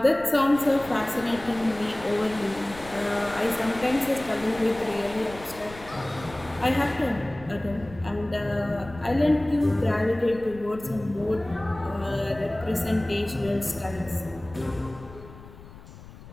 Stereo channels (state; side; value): noise; left; rumble, 18 dB below the sound